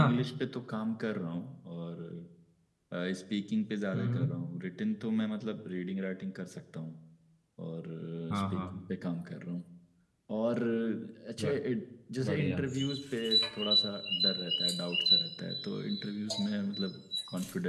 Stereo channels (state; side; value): identical; both; correlation 1.00